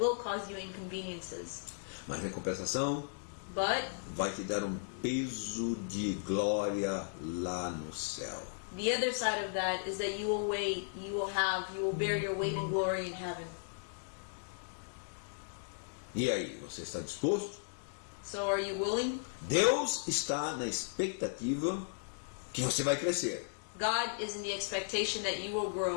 cause you inconveniences. Mas em compensação, But vai te dar um peso de glória lá no céu. the other side of that is that you will bear your weight in glory in heaven. E aí, você está disposto? So are you willing? Deus está na expectativa que você vai crescer, God is in the expectation that you will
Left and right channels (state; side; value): silent; right; digital silence